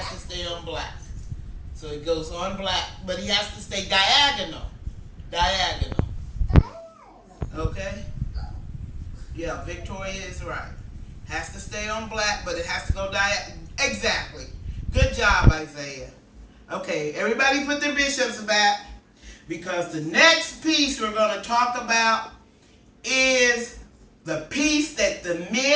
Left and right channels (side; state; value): both; identical; correlation 1.00